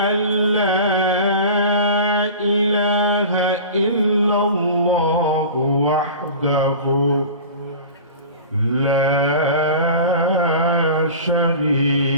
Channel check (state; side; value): inverted; both; correlation -0.36